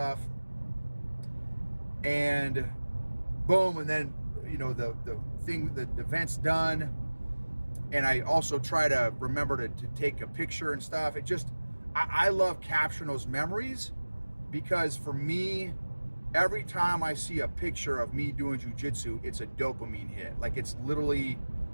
And boom, and then, you know, the event's done. And I also try to remember to take a picture and stuff. It just, I love capturing those memories, because for me, every time I see a picture of me doing jiu-jitsu, it's a dopamine hit. Like, it's literally,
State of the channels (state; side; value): inverted; both; correlation -1.00